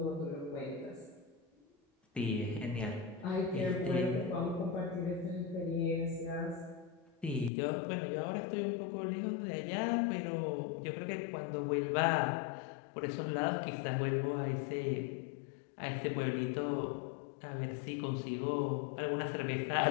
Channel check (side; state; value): right; drops out; at 7.5 s